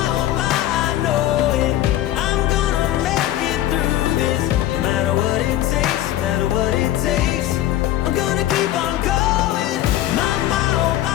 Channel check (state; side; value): quieter; right; 13.4 dB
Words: oh my, I know it. I'm gonna make it through this. No matter what it takes, no matter what it takes, I'm gonna keep on going. Mama, oh